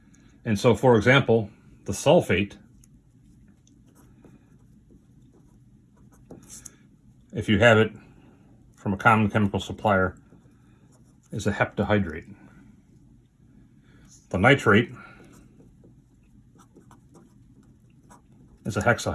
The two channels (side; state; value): both; identical; correlation 1.00